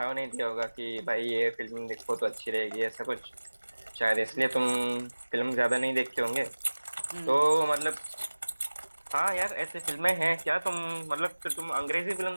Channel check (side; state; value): both; inverted; correlation -1.00